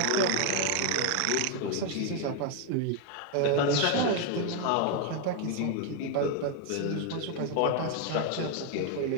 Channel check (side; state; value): both; different; correlation 0.01